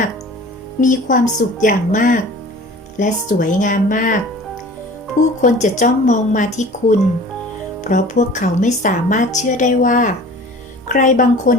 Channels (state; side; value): normal; both; correlation 0.44